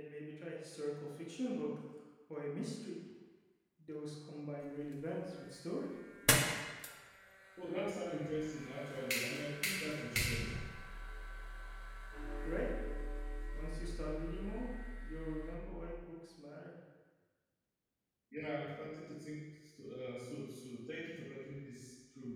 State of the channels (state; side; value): identical; both; correlation 1.00